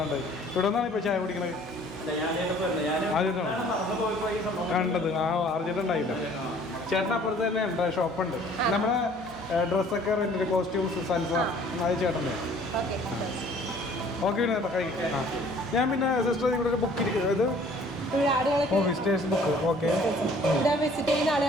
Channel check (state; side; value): normal; both; correlation 0.54